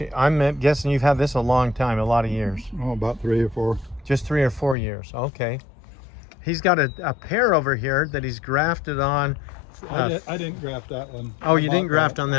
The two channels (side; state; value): right; drops out; at 4.8 s